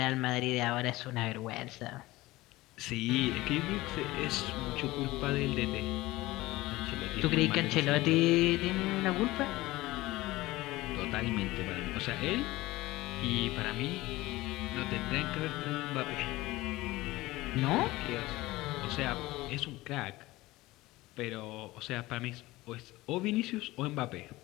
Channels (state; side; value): quieter; right; 19.0 dB